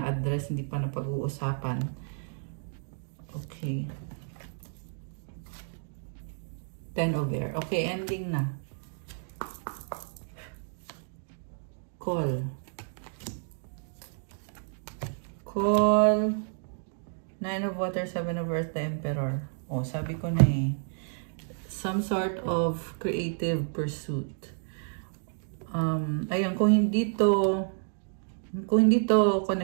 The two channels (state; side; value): silent; left; digital silence